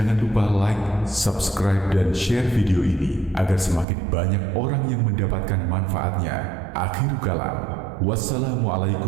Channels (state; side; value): drops out; left; at 3.9 s